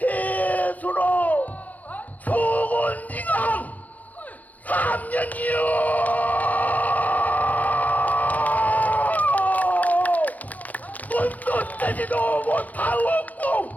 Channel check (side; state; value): right; late; 0.078 ms